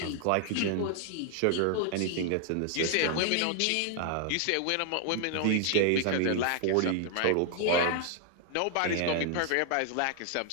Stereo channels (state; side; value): different; both; correlation 0.00